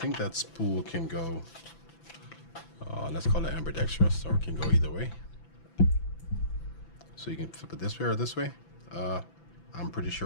that spool can go, let's call it ambidextrous, or it can go either way. So you can flip it this way or this way. I'm pretty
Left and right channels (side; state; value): right; late; 6.0 ms